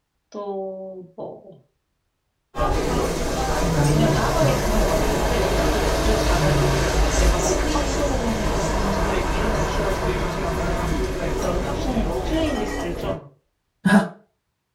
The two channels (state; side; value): identical; both; correlation 1.00